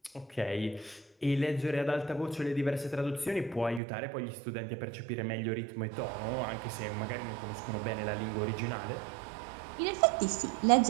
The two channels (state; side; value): drops out; left; at 3.8 s